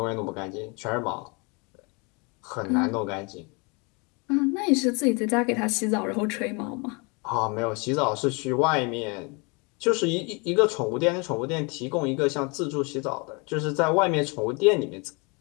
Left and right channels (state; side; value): quieter; right; 30.4 dB